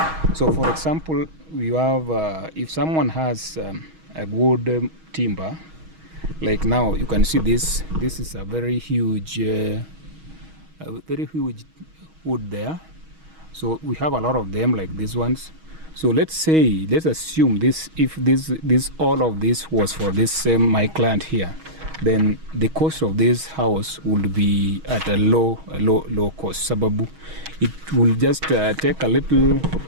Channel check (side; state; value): left; late; 6.3 ms